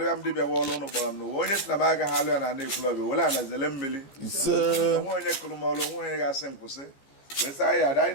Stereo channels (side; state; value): right; late; 15 ms